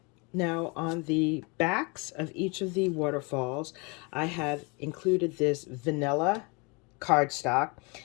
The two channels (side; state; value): right; quieter; 30.0 dB